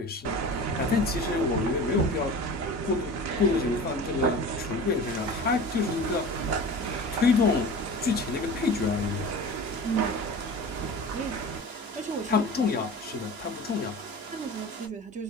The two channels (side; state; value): both; normal; correlation 0.35